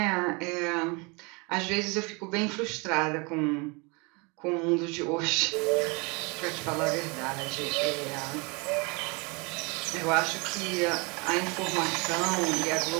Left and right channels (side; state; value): left; quieter; 29.4 dB